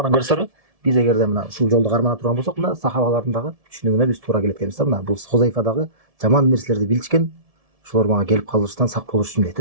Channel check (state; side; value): late; left; 1.7 ms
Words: көрсөрү, биз эгерде мына ушул жолду кармана турган болсок, мына сахабалардын дагы түшүнүгүнө биз туура келет экенбиз да. Мына бул Хузайфа дагы жаман нерселерди билишкен, ошолор мага келип калыштан сак болуш үчүн дейт